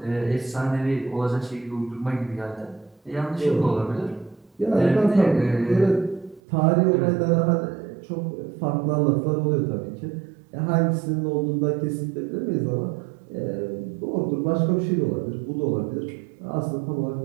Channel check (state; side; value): drops out; left; at 6.4 s